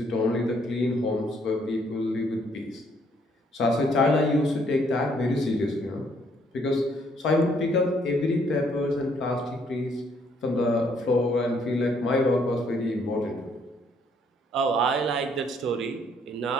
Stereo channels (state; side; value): normal; both; correlation 0.67